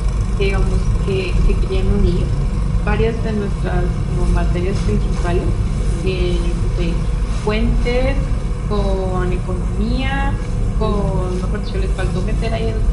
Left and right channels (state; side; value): identical; both; correlation 1.00